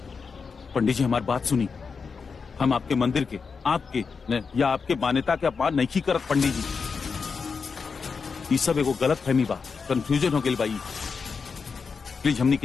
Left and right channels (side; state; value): right; quieter; 5.3 dB